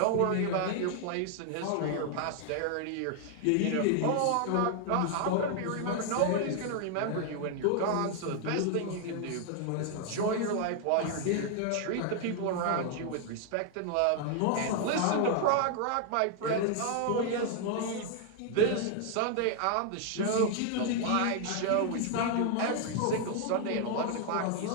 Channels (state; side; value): different; both; correlation 0.00